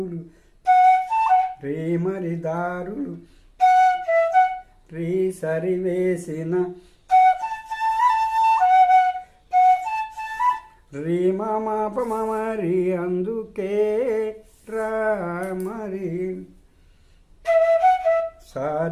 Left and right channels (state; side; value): identical; both; correlation 1.00